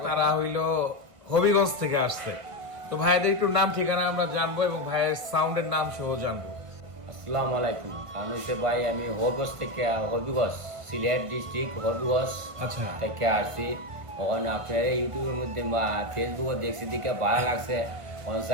তারা হইল হবিগঞ্জ থেকে আসছে। তো ভাইদের একটু নাম ঠিকানা আমরা জানবো এবং ভাইয়ের সাউন্ডের নাম সহ জানবো। আসসালামু আলাইকুম। কারণ হচ্ছে ভাই আমি হবিগঞ্জ থেকে হবিগঞ্জ সিলেট ডিস্ট্রিক্ট হবিগঞ্জ আচ্ছা, থেকে আসছি। ওখানে আপনার ইউটিউবের মধ্যে বা ফেসবুকে দেখছি দিকে ভালো লাগছে। ওখানে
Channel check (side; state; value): left; late; 1.4 ms